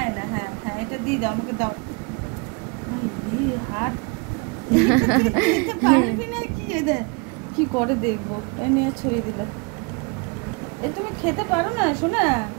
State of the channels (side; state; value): left; quieter; 32.1 dB